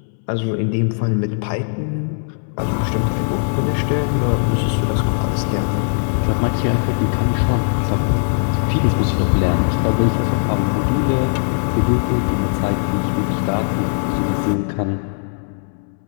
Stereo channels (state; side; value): silent; right; 66 dB below the other